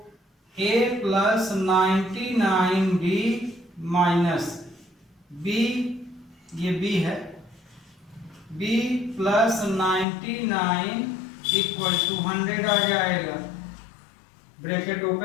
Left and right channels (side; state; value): right; drops out; at 10.1 s